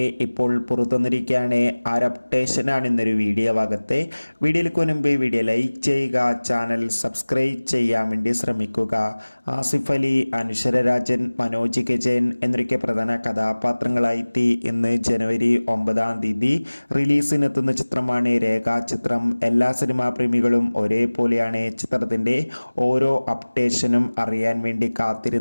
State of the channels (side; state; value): both; inverted; correlation -1.00